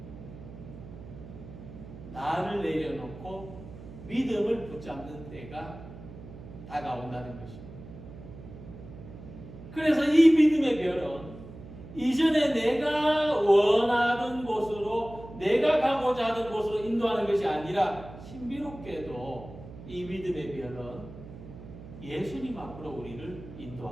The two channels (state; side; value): noise; right; hum, 15 dB below the sound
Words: 나를 내려놓고 믿음을 붙잡는 때가 다가온다는 것입니다. 그래서 이 믿음의 별은 이전에 내가 원하던 곳으로, 내가 가고자 하는 곳으로 인도하는 것이 아니라 신비롭게도 이 믿음의 별은 예수님 앞으로 우리를